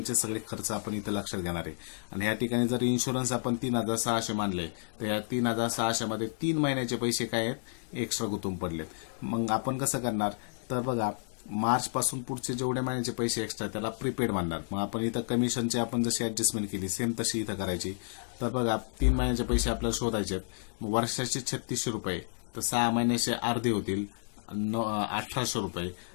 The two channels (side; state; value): right; silent; digital silence